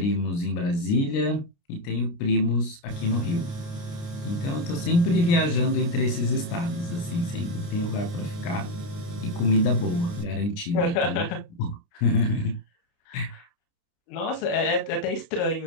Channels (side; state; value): right; late; 29 ms